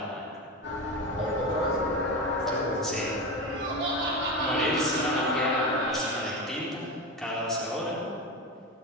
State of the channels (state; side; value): normal; both; correlation 0.21